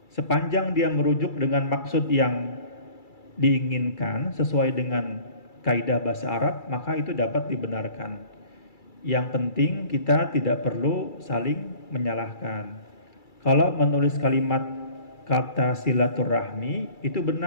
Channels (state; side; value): late; right; 2.3 ms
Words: sepanjang dia merujuk dengan maksud yang diinginkan sesuai dengan kaidah bahasa Arab, maka itu dapat dibenarkan. Yang penting kita tidak perlu saling menyalahkan. Kalau menulis kalimat kata silaturahmi itu